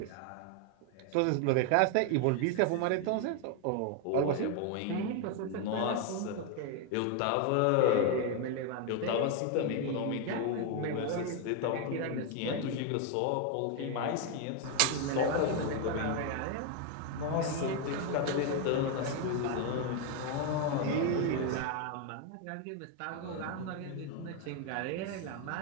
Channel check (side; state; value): both; different; correlation 0.01